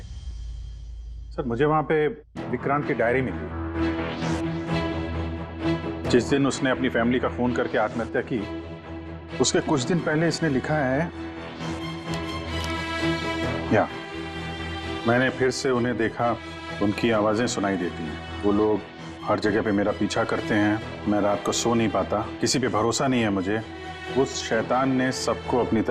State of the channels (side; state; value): both; identical; correlation 1.00